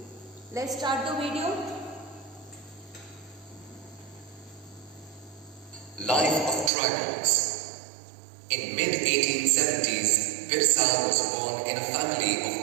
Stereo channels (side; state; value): left; drops out; at 6.7 s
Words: Let's start the video. Life of tribals. In mid-1870s, Birsa was born in a family of